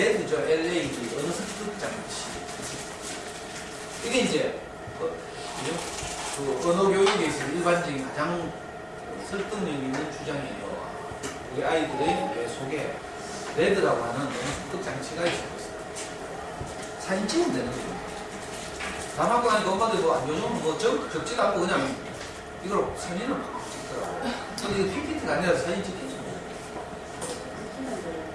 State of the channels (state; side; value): identical; both; correlation 1.00